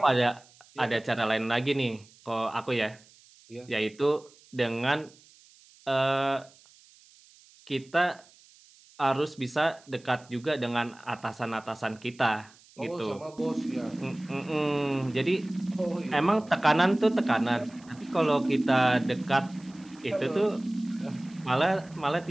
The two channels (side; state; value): right; noise; hiss, 27 dB below the sound